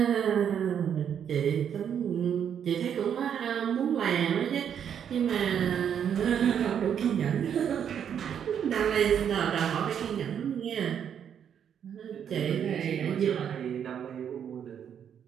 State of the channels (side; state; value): left; quieter; 8.5 dB